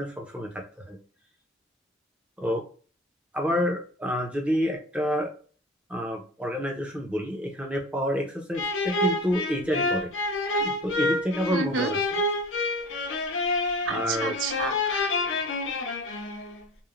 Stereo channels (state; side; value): normal; both; correlation 0.38